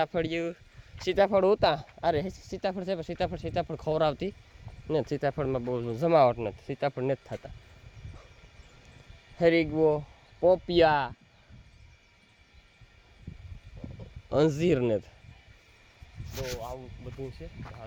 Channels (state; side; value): identical; both; correlation 1.00